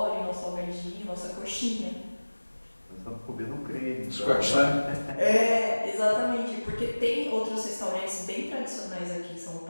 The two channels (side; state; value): both; inverted; correlation -1.00